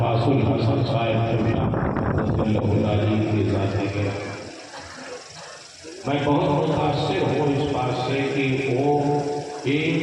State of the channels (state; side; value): identical; both; correlation 1.00